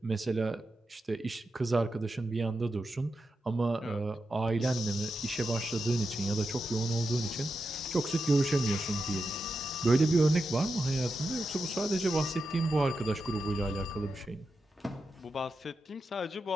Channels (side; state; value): both; normal; correlation 0.89